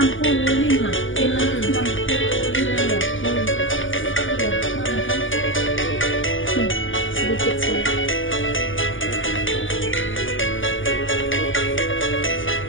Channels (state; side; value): late; right; 0.57 ms